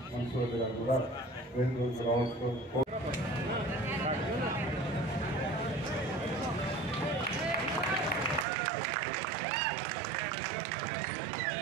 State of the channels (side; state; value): left; drops out; at 8.5 s